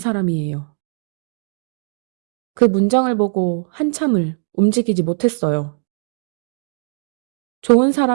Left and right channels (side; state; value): left; silent; digital silence